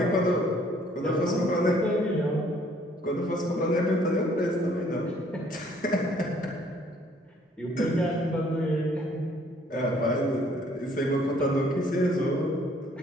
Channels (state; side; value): normal; both; correlation 0.61